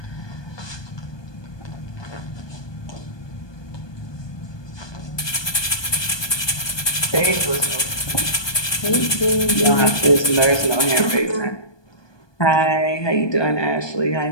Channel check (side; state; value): right; late; 1.2 ms